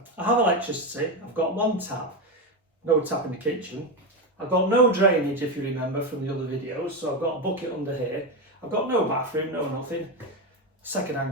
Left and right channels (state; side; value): normal; both; correlation 0.13